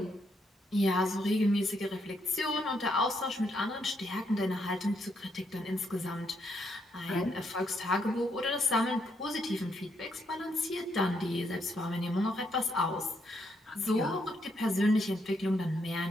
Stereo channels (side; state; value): both; normal; correlation 0.76